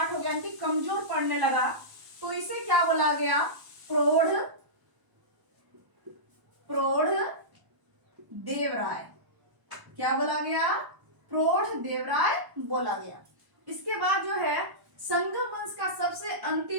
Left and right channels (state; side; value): late; left; 1.0 ms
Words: हो गया, यानी कमजोर पड़ने लगा। तो इसे क्या बोला गया? प्रौढ़ देवराय। क्या बोला गया? प्रौढ़ देवराय बोला गया। इसके बाद जो है संगम वंश का सबसे